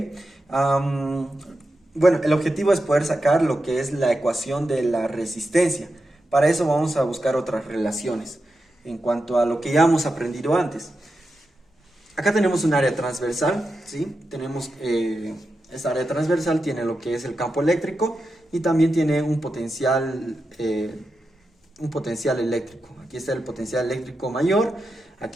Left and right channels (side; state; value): both; normal; correlation 0.89